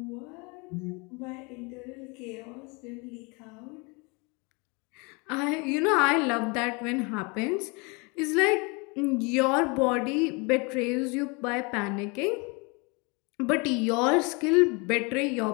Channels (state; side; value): quieter; right; 29.5 dB